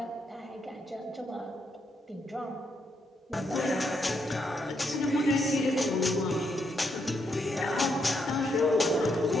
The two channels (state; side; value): normal; both; correlation 0.78